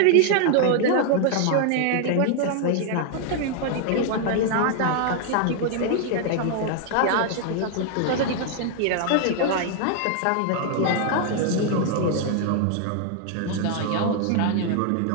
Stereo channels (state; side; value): different; both; correlation 0.00